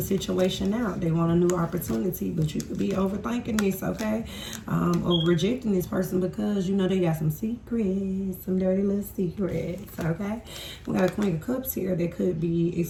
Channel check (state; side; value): identical; both; correlation 1.00